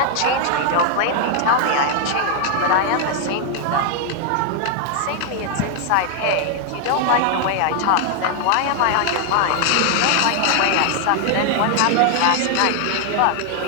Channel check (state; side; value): different; both; correlation 0.00